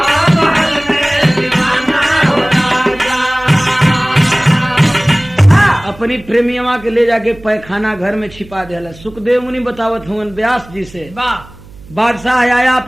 अपनी प्रेमियवा के ले जाके पैखाना घर में छिपा दिया। सुखदेव मुनि बतावत हुए व्यास जी से बादशाह आया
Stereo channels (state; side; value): noise; right; hum, 21 dB below the sound